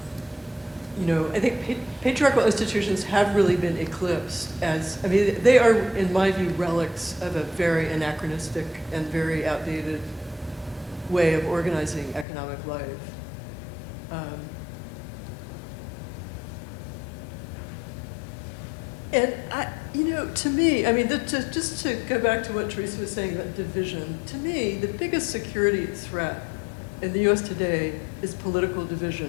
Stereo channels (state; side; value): drops out; right; at 12.2 s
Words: I think patriarchal institutions have really been eclipsed they are, in my view, relics of a very anachronistic and very outdated way of organizing economic life. And to me, just to go back to what Teresa was saying about division, to me, the biggest security threat in the U.S. today is political division